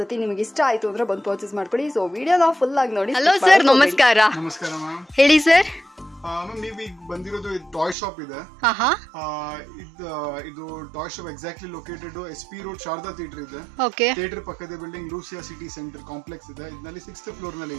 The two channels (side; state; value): left; drops out; at 8.0 s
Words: ನಿಮಗೆ ಇಷ್ಟ ಆಯ್ತು ಅಂದ್ರೆ ಬಂದು ಪರ್ಚೇಸ್ ಮಾಡ್ಕೊಳ್ಳಿ. ಸೊ ವಿಡಿಯೋನ ಫುಲ್ ಆಗಿ ನೋಡಿ. ಹಲೋ ಸರ್, ನಮಸ್ಕಾರ. ನಮಸ್ಕಾರ ಮ್ಯಾಮ್, ಹೇಳಿ ಸರ್. ಮ್ಯಾಮ್, ನೀವು ಈಗ ಬಂದಿರೋದು ಟಾಯ್ ಶಾಪ್ ಇದೆ. ಇದು toy shop exactly located SP road Sharada theatre ಇದೆ. ಥಿಯೇಟರ್ ಪಕ್ಕದ building Lucia city centre complex ಇದೆ. ಇದರಲ್ಲಿ 6th ಫ್ಲೋರ್ ನಲ್ಲಿ